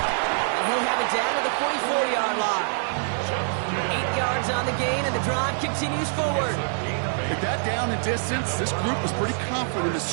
he'll have it down to the 44-yard line. 8 yards on the gain, and the drive continues forward. With that down and distance, this group was pretty confident the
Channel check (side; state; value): left; silent; 62 dB below the other